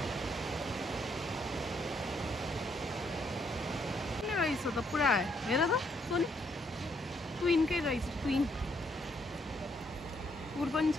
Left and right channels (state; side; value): normal; both; correlation 0.72